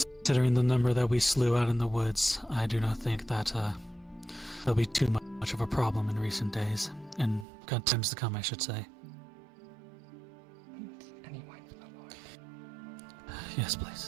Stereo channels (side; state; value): left; drops out; at 7.5 s